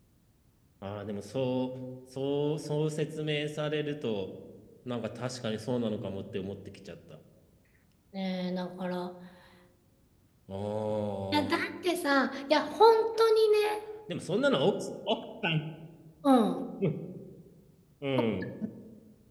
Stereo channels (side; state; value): both; identical; correlation 1.00